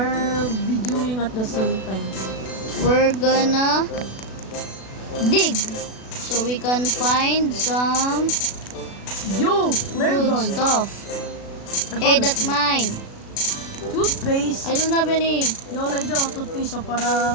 videoing at the same time. We're gonna dig so we can find some Yo! Flare good gun! stuff. I Hey, found a that's few. mine. Toothpaste! I don't have any. Yo, like daw, toothpaste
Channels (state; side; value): late; right; 36 ms